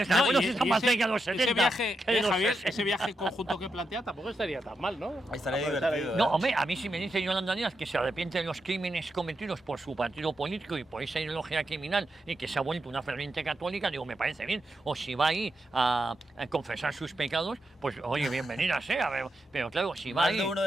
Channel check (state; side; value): normal; both; correlation 0.85